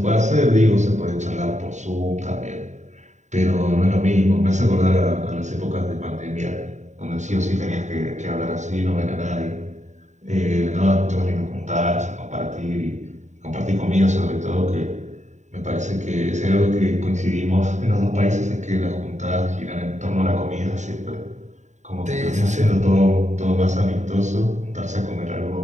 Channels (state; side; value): late; left; 0.34 ms